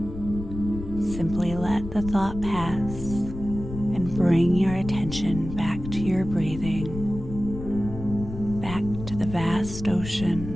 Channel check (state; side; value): noise; left; rumble, 9 dB below the sound